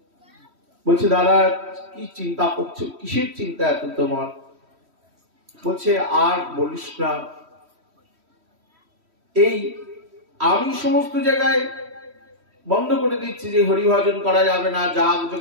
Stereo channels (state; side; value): late; left; 3.1 ms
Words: বলছে দাদা কি চিন্তা করছো, কিসের চিন্তা এত তোমার? বলছে আর বলিস না, এই আমি সমস্ত জায়গায় বন্ধ করে দিচ্ছি যে হরিভজন করা যাবে না, যাগ